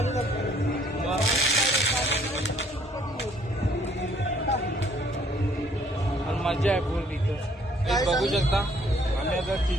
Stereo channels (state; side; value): normal; both; correlation 0.62